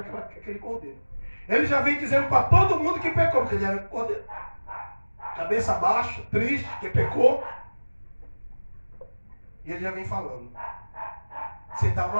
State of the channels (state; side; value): inverted; both; correlation -1.00